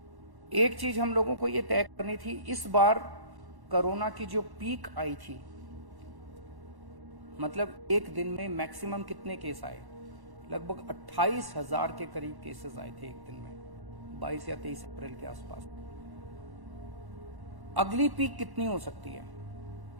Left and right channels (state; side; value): late; left; 1.1 ms